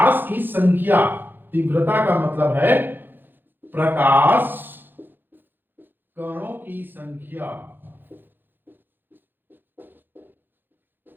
की संख्या। तीव्रता का मतलब है प्रकाश कणों की संख्या।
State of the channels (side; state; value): left; late; 0.095 ms